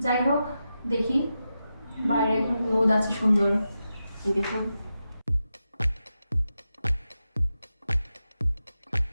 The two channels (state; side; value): inverted; both; correlation -0.90